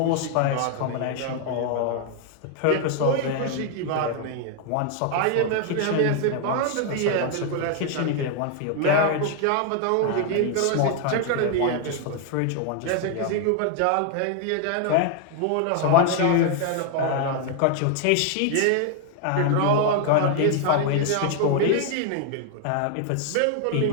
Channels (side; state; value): both; different; correlation 0.00